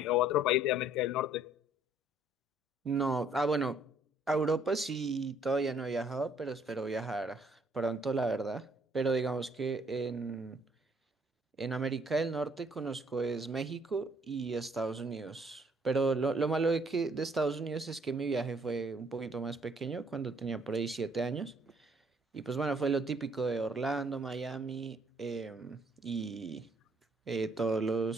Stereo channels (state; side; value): normal; both; correlation 0.63